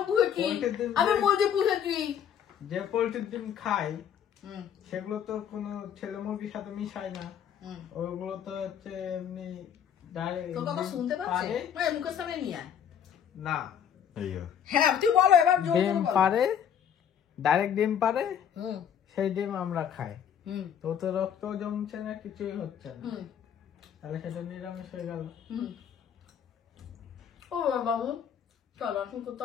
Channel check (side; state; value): right; quieter; 8.6 dB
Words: পুষেছি, আমি মুরগি পুষেছি। যে পোল্ট্রির ডিম খাই সেগুলো তো কোনো ছেলে মুরগির সাথে মিশায় না, ওইগুলো তো হচ্ছে এমনি ডাইরেক্ট। তোর কথা শুনতে পাচ্ছে, মুখের সামনে নিয়ে আয়। না, হ্যাঁ তুই বলো এবার। ডিম পারে, ডাইরেক্ট ডিম পারে, সেই ডিম আমরা খাই। তো তো রক্ত জমছে না, কিছুই হচ্ছে না, তাহলে সেটা নিরামিষ হয়ে গেল। ও বাবু, চল এখন